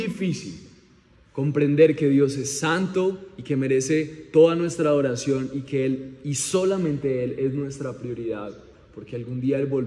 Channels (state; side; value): identical; both; correlation 1.00